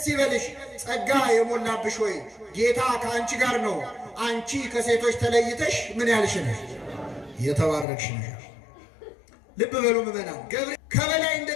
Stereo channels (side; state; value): right; drops out; at 7.9 s